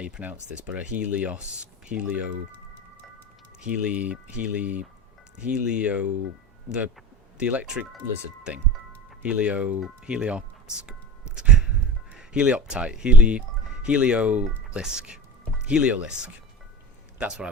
pronounce this, but a Helio... The electric lizard thing. Heliolisk. That's what I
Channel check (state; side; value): normal; both; correlation 0.34